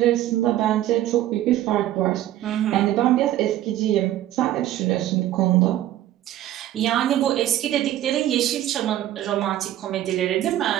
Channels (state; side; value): quieter; left; 13.3 dB